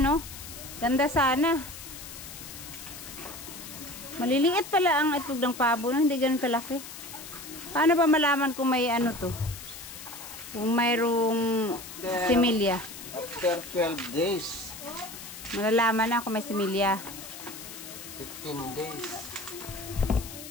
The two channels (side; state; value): left; noise; hiss, 12 dB below the sound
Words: Ganda sana. Maliliit pala ang itlog ng pabo, no? Hindi ganun kalaki. Paano ba malaman kung may ano to? Kung mayroong similya. After 12 days, Malalaman na kung may similya. 15 days.